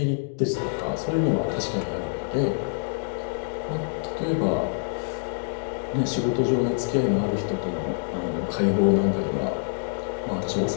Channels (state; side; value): silent; right; digital silence